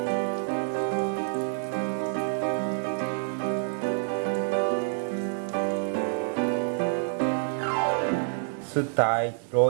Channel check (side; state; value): left; silent; digital silence